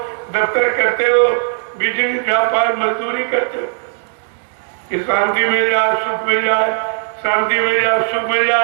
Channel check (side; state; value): left; silent; digital silence